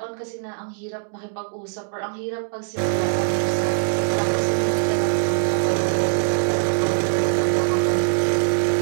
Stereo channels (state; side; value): silent; left; digital silence